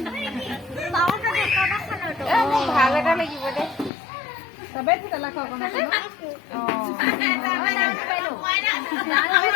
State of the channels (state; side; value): drops out; right; at 3.9 s